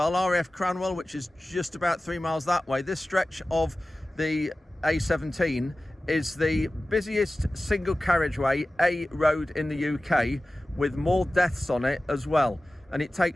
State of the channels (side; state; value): both; normal; correlation 0.96